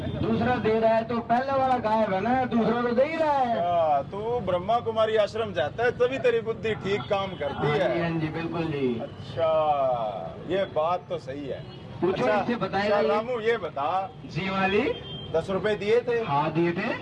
दूसरा दे रहा है तो पहला वाला गायब है ना, दूसरा तो दे ही रहा है। अच्छा, तू ब्रह्मा कुमारी आश्रम जाता है तभी तेरी बुद्धि ठीक काम करती हाँ जी है। हाँ जी बिल्कुल जी। अच्छा, ये बात तो सही है। पूछो, इससे बताएगा ये। रामू ये बता, जी मालिक। 10 रुपए दिए थे। हाँ दिए थे।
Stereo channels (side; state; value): both; identical; correlation 1.00